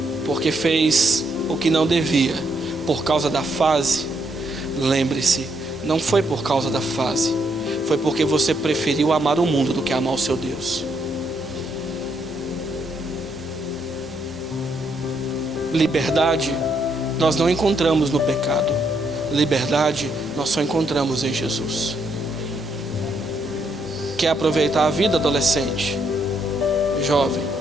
porque fez o que não devia por causa da fase, lembre-se, não foi por causa da fase, foi porque você preferiu amar o mundo do que amar o seu Deus. Liberdade nós não encontramos no pecado. Liberdade nós só encontramos em Jesus. Quer aproveitar a vida, adolescente, jovem,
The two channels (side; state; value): both; normal; correlation 0.75